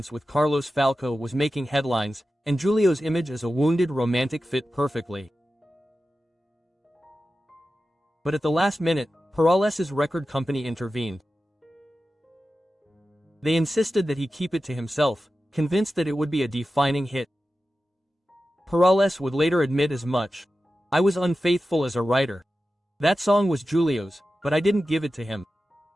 with Carlos Falco was making headlines, and Julio's image as a wounded romantic fit perfectly. But at the last minute, Perales' record company intervened. They insisted that he keep it to himself, convinced that it would be a defining hit. Perales would later admit as much. I was unfaithful as a writer. That song was Julio's, but I didn't give it to him.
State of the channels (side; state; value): both; normal; correlation 0.93